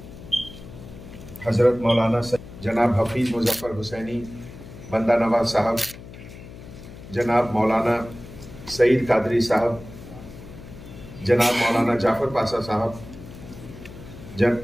हजरत मौलाना जनाब हफीज मुजफ्फर हुसैनी बंदा नवाज साहब, जनाब मौलाना सईद कादरी साहब, जनाब मौलाना जाफर पाशा साहब,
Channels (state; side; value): noise; left; hum, 15 dB below the sound